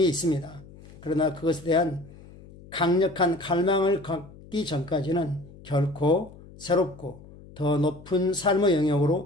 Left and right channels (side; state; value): left; noise; hum, 20 dB below the sound